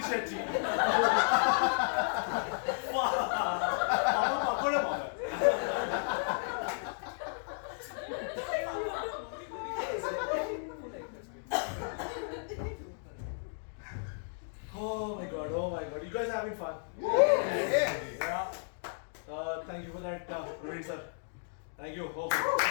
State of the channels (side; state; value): right; silent; digital silence